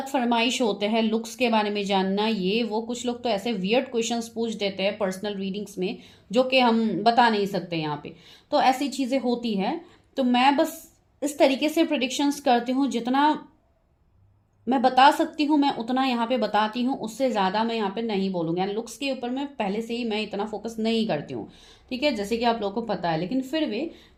फरमाइश होते हैं लुक्स के बारे में जानना, ये वो कुछ लोग तो ऐसे वियर्ड क्वेश्चंस पूछ देते हैं पर्सनल रीडिंग्स में जो कि हम बता नहीं सकते यहाँ पे, तो ऐसी चीज़ें होती है। तो मैं बस इस तरीके से प्रिडिक्शंस करती हूँ, जितना मैं बता सकती हूँ मैं उतना यहाँ पे बताती हूँ, उससे ज़्यादा मैं यहाँ पे नहीं बोलूँगी। एंड लुक्स के ऊपर मैं पहले से ही मैं इतना फोकस नहीं करती हूँ, ठीक है, जैसे कि आप लोगों को पता है। लेकिन फिर भी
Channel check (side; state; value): both; identical; correlation 1.00